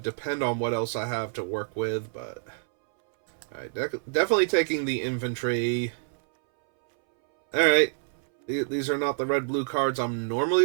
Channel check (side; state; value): left; silent; 60 dB below the other